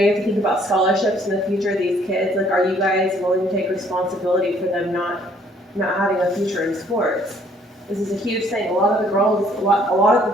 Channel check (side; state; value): both; normal; correlation 0.62